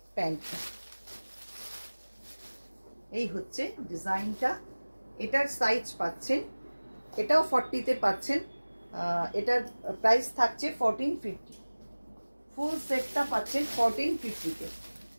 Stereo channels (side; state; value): both; inverted; correlation -1.00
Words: প্যান্টটা। এই হচ্ছে ডিজাইনটা। এটার সাইজ পাচ্ছেন, এটাও 40-তে পাচ্ছেন। এটার প্রাইস থাকছে 1450। ফুল সেটটা পাচ্ছেন 1450-তে।